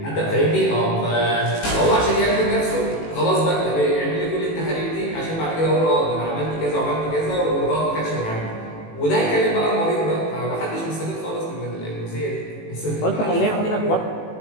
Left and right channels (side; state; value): right; late; 18 ms